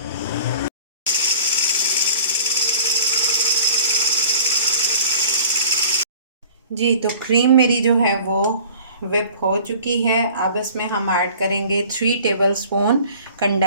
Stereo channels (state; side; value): inverted; both; correlation -0.47